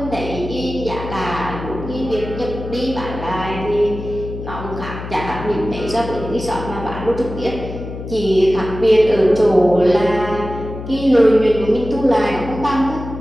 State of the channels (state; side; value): noise; left; hum, 9 dB below the sound